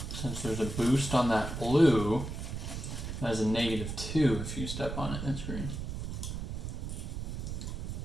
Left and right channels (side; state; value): right; noise; rumble, 5 dB below the sound